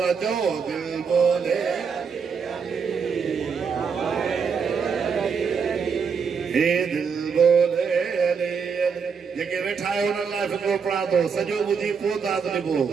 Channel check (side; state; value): left; quieter; 6.0 dB